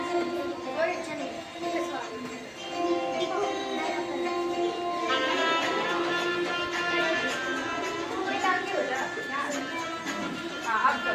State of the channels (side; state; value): both; identical; correlation 1.00